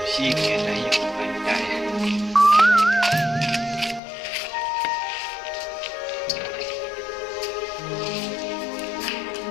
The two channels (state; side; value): drops out; right; at 4.0 s